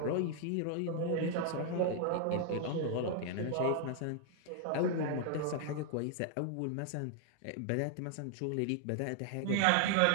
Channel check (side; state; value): both; different; correlation 0.00